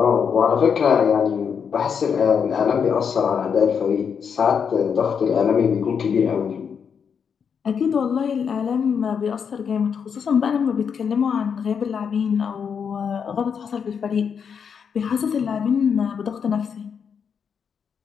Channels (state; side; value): quieter; right; 6.8 dB